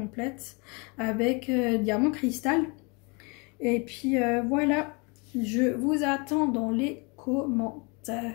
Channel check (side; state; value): right; quieter; 31.0 dB